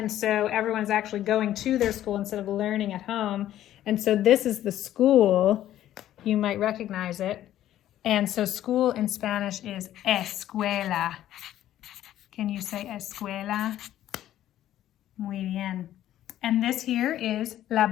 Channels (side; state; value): right; quieter; 12.5 dB